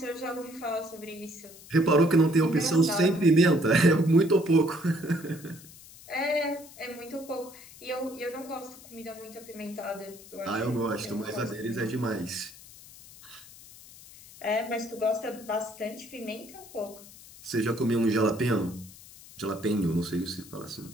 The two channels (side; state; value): left; noise; hiss, 19 dB below the sound